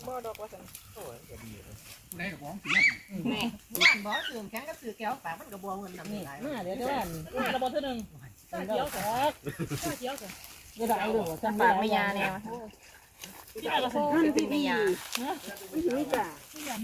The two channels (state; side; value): identical; both; correlation 1.00